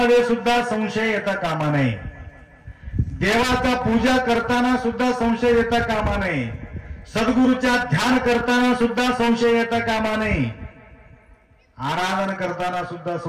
सुद्धा संशय येता कामा नये. देवाचा पूजा करताना सुद्धा संशय येता कामा नये. सद्गुरूच्या ध्यान करताना सुद्धा संशय येता कामा नये. आराधन करताना सुद्धा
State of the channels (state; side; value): identical; both; correlation 1.00